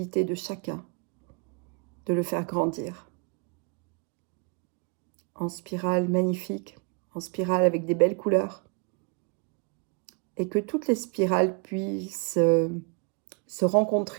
de chacun de le faire grandir. En spirale magnifique, en spirale avec des belles couleurs, et que toutes les spirales puissent se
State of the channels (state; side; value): quieter; left; 36.8 dB